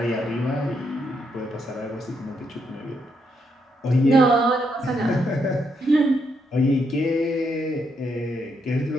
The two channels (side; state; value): both; normal; correlation 0.77